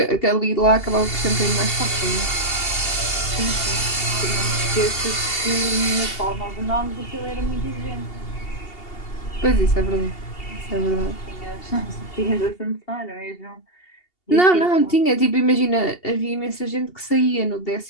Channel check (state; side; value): late; right; 2.8 ms